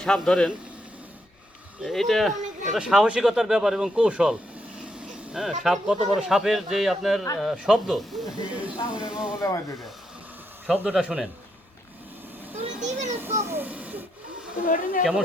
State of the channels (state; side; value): normal; both; correlation 0.79